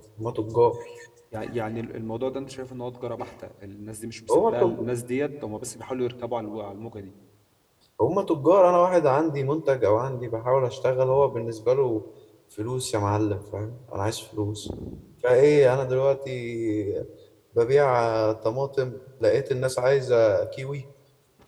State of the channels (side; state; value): both; identical; correlation 1.00